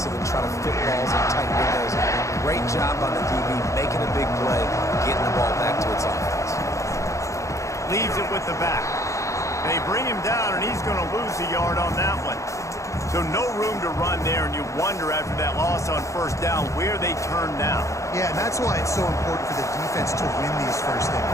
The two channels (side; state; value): right; late; 0.15 ms